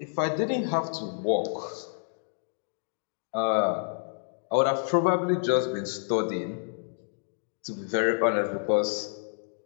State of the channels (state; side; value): silent; right; digital silence